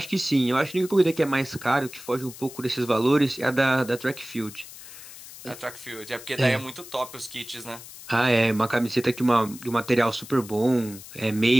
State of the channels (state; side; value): noise; left; hiss, 16 dB below the sound